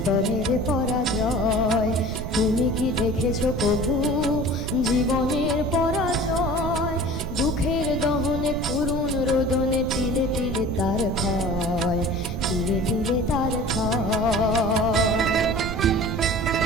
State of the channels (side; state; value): right; noise; rumble, 6 dB below the sound